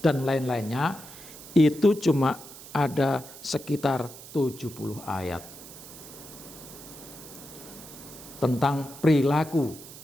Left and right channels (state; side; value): noise; right; hiss, 16 dB below the sound